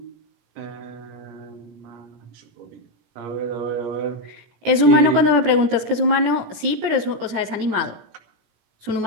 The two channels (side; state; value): left; late; 17 ms